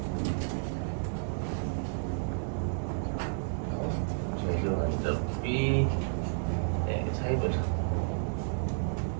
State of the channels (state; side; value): silent; left; 55 dB below the other